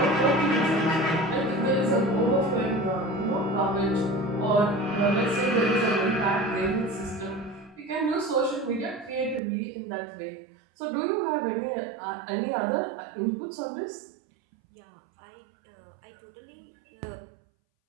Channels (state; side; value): drops out; left; at 9.4 s